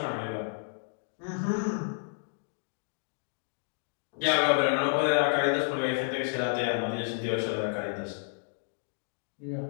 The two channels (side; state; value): right; silent; digital silence